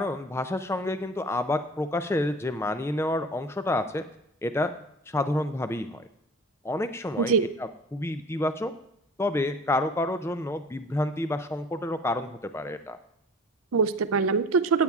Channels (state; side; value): normal; both; correlation 0.43